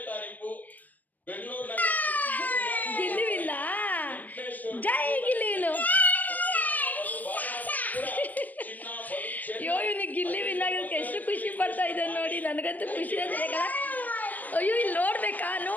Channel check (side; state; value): right; late; 0.083 ms